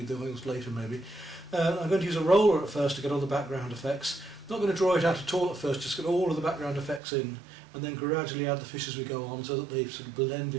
the oils later maybe. I'm going to use a roller at first to get all the background effects. Not going to draw it out at all at first, just get all of the background effects in and then gradually add the fish as we go on so that they sort of blend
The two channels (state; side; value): drops out; left; at 7.0 s